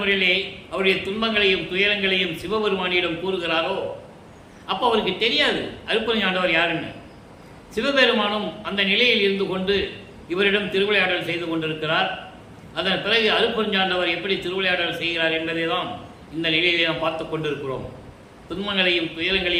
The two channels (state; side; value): identical; both; correlation 1.00